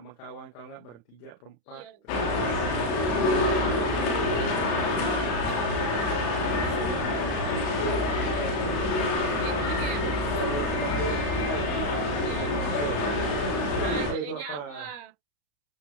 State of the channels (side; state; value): right; late; 35 ms